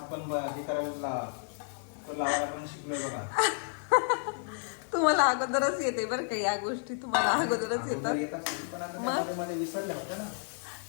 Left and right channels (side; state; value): right; silent; 57 dB below the other